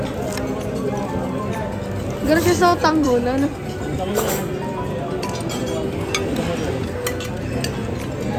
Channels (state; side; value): identical; both; correlation 1.00